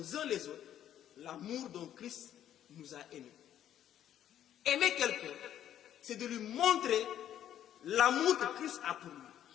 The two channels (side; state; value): right; quieter; 10.9 dB